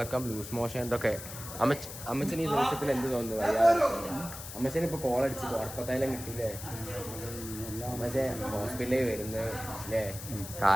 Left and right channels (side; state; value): left; noise; hiss, 11 dB below the sound